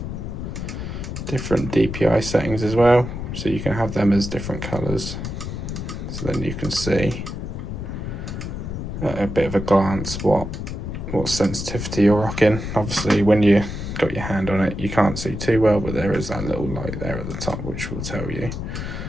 different DPI settings as well, so you can have them as different colors, so then you can see at a bit of a glance what sensitivity you're rocking. Obviously when you got your hand on it you can't see too well, but there is that little light there at the top which will tell you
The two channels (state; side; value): noise; left; rumble, 6 dB below the sound